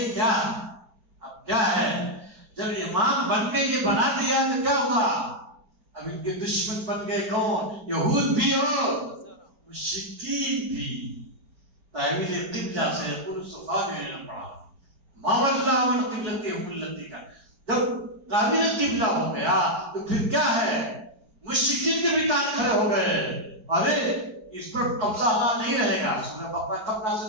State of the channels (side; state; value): left; late; 4.7 ms